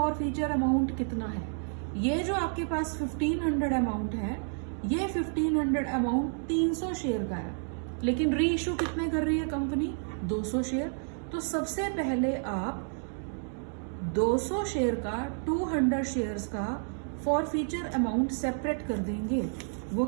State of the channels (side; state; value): left; silent; 58 dB below the other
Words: फीचर अमाउंट कितना है? ये जो आपके पास 1500 अमाउंट है, ये 1500 अमाउंट 300 शेयर का है, लेकिन री इश्यू कितने कर रही है कंपनी? 200 शेयर। तो सबसे पहले आप 200 शेयर का 200 शेयर्स का फॉर फीचर अमाउंट सेपरेट कर देंगे। वो